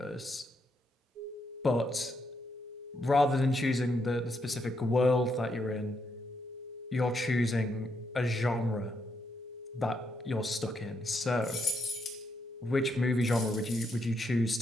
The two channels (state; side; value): normal; both; correlation 0.78